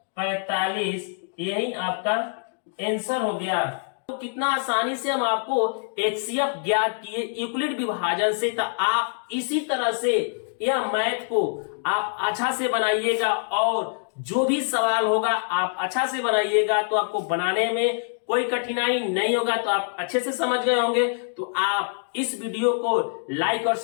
45, यही आपका आंसर हो गया। तो कितना आसानी से हम आपको एचसीएफ ज्ञात किए यूक्लिड विभाजन से। तो आप इसी तरह से यह मैथ को आप अच्छा से बनाइएगा, और जो भी सवाल होगा आप अच्छा से बनाइएगा, तो आपको बनाने में कोई कठिनाई नहीं होगा। तो आप अच्छे से समझ गए होंगे। तो आप इस वीडियो को लाइक और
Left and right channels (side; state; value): right; silent; digital silence